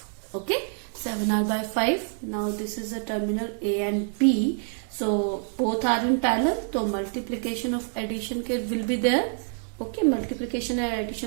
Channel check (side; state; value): left; silent; 60 dB below the other